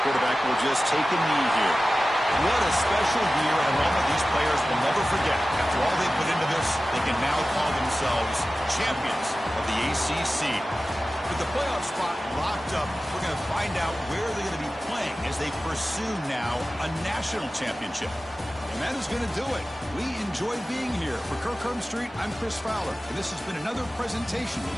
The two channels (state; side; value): normal; both; correlation 0.95